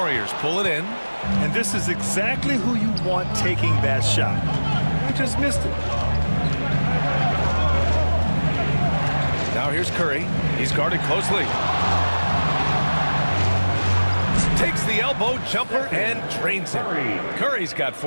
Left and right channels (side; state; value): both; inverted; correlation -1.00